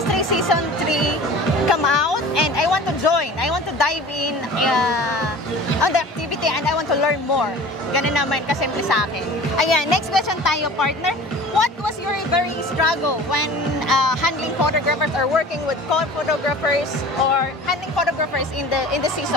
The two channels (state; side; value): normal; both; correlation 0.41